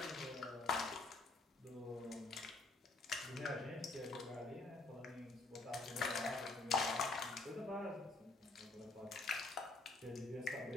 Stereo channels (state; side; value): quieter; right; 3.4 dB